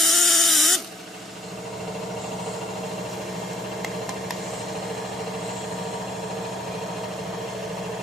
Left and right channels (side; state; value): both; normal; correlation 0.61